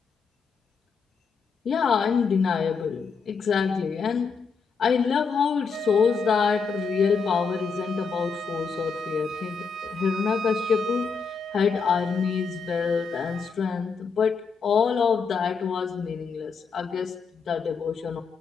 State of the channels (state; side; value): quieter; right; 5.4 dB